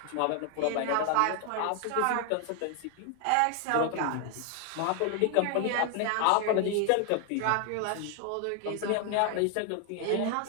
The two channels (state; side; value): different; both; correlation 0.00